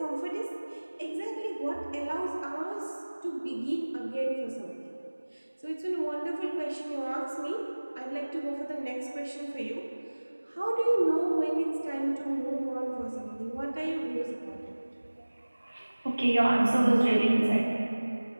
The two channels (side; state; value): both; inverted; correlation -1.00